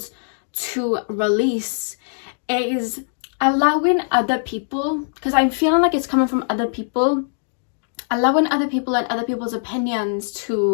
to release is allowing other people, because I'm feeling like it's coming from other people, allowing other people and other people's opinions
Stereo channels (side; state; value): right; silent; digital silence